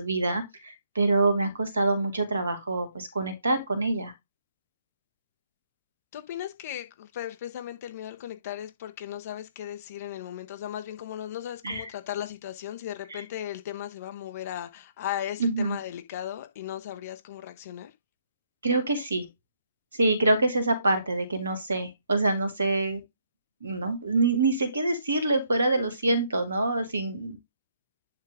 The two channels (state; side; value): inverted; both; correlation -0.71